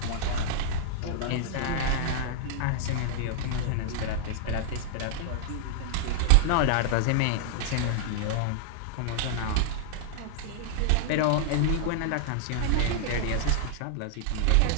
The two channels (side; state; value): both; different; correlation -0.01